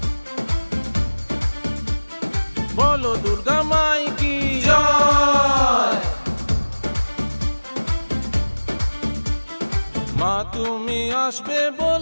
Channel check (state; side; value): inverted; both; correlation -1.00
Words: বলো দুর্গা মাই কি জয়। মা তুমি আসবে